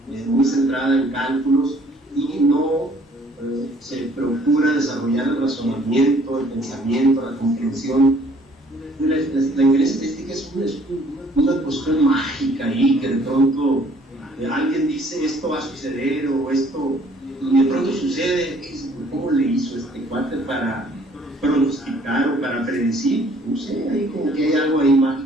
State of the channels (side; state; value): both; normal; correlation 0.59